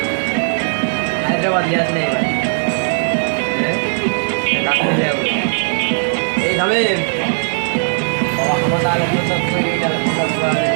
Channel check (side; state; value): left; silent; digital silence